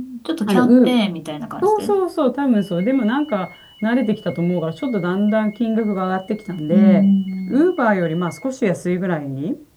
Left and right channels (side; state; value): both; identical; correlation 1.00